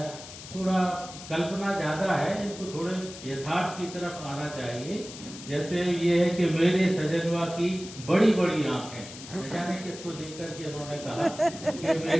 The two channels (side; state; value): left; noise; hiss, 14 dB below the sound